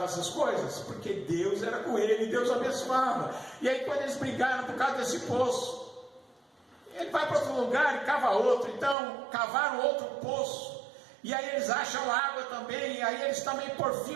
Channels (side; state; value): left; drops out; at 9.0 s